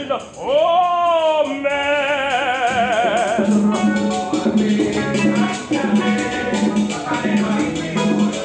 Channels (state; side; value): identical; both; correlation 1.00